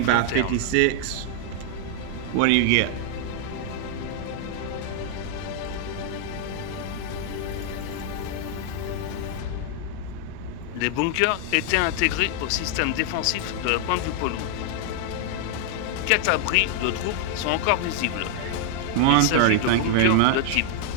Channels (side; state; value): both; different; correlation 0.00